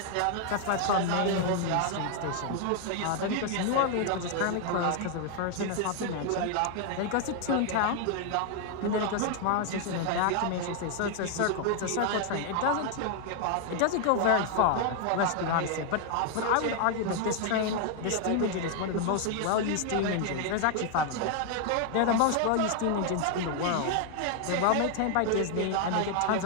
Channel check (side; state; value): both; different; correlation 0.00